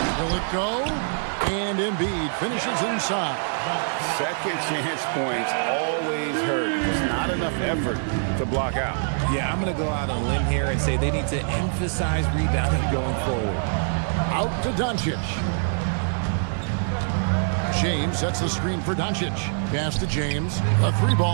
Will it go? And Embiid finishes inside. Second chance points always hurt. There's not enough effort to block out. Yeah, I'm going to go out on a limb here and say they need to emphasize rebounding going forward. Out to Doncic. James sets the screen for Doncic. Pass to James. A three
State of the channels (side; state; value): left; silent; 62 dB below the other